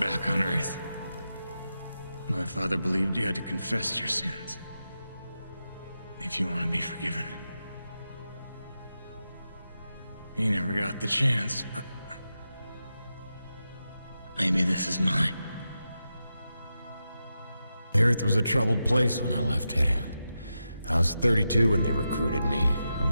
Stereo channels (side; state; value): both; inverted; correlation -0.89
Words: on Earth, my father believed you had to confess your sins if you want to be forgiven. He never got the chance, but maybe this is mine. The Earth was a troubled place when I left it. I was 32 when they recruited me.